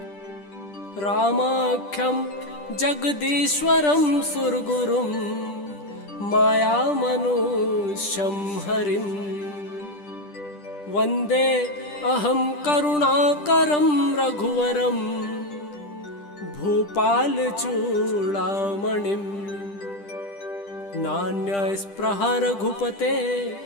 रामाख्यं जगदीश्वरं सुरगुरुं मायामनुष्यं हरिं वन्दे अहं करुणाकरं रघुवरं भूपालचूडामणिं। नान्यस्पृहा रघुपते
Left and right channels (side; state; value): right; late; 10 ms